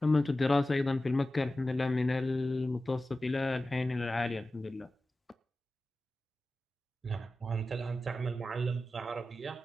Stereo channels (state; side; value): normal; both; correlation 0.94